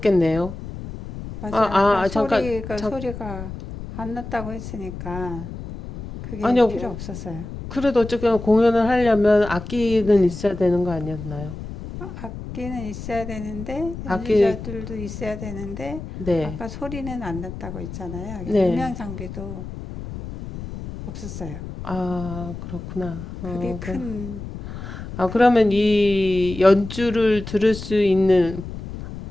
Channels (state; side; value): noise; left; rumble, 10 dB below the sound